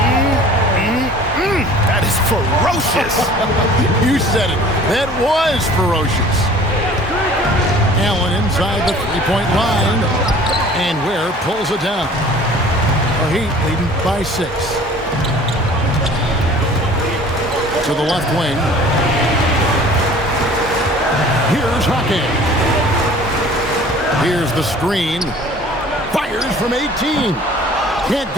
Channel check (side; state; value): both; normal; correlation 0.48